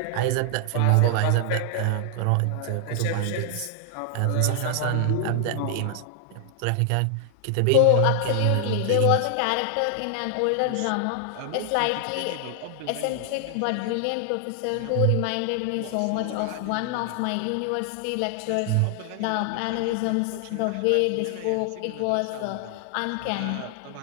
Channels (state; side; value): different; both; correlation 0.00